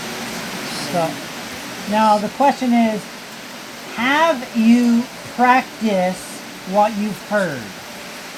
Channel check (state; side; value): identical; both; correlation 1.00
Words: So, now the question is, have you practiced what you've heard?